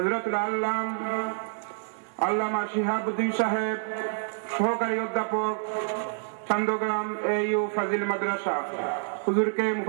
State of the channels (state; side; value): silent; left; digital silence